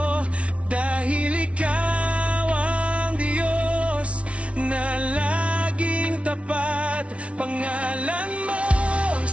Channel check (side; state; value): left; late; 0.062 ms